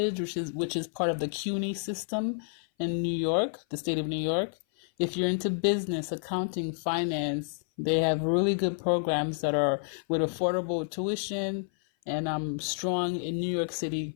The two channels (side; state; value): right; silent; 57 dB below the other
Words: which is part of the CUNY system in New York, the state of New York. If you're into business, accounting, finance, they have really good programs that are with affordable tuition and strong in New York